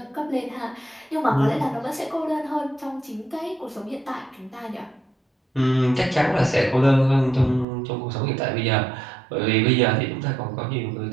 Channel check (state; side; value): drops out; left; at 7.7 s